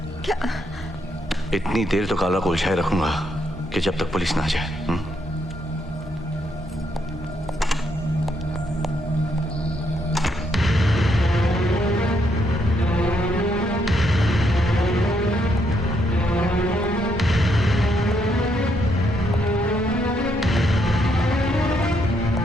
क्या? इतनी देर तो काला को उलझाए रखूंगा कि जब तक पुलिस ना आ जाए।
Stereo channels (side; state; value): both; normal; correlation 0.76